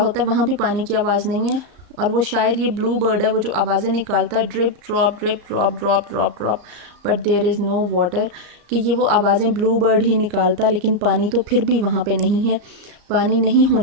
होता है, वहाँ भी पानी की आवाज़ नहीं है। और वो शायद ये ब्लू बर्ड है वो जो आवाज़ें निकालता है, drip drop drop drop drop, but there is no water, कि ये वो आवाज़ें ब्लू बर्ड ही निकालता, लेकिन पानी तो फिर भी वहाँ पे नहीं है। पानी नहीं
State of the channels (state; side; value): late; left; 34 ms